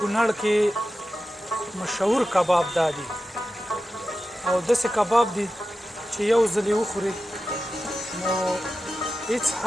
کې مشهور کباب دا دي او داسې کباب دي چې یو ځل یې وخورې نو هېڅ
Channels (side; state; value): both; normal; correlation 0.93